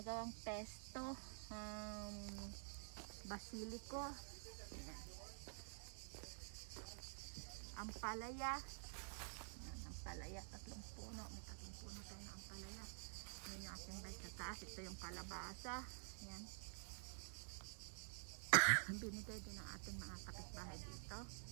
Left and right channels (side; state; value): left; silent; digital silence